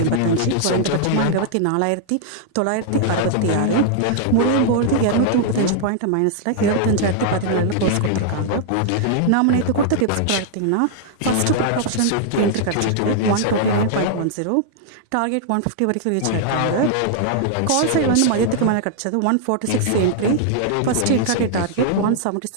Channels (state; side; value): different; both; correlation -0.01